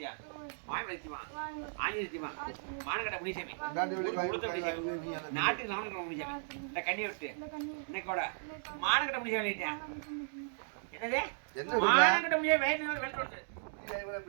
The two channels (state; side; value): silent; left; digital silence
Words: மாயமலைத்தியமா ஆஞ்சலித்தியமா மானகட்ட முனிசாமி நாட்டுக்கு நாமக்கல் முனிசாமி இந்த கண்ணியை விட்டு இன்னைக்கு கூட மானகட்ட முனிசாமி அழைச்சேன் என்னது மானகட்ட முனிசாமி வெளிப்படுத்து